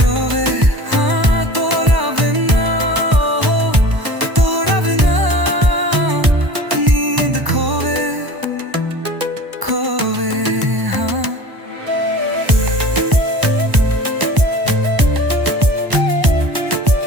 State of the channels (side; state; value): left; late; 1.0 ms